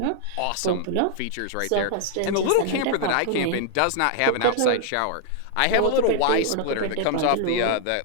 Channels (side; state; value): both; different; correlation 0.00